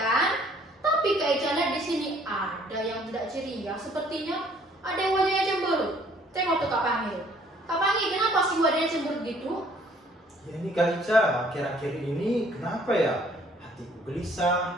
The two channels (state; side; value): normal; both; correlation 0.60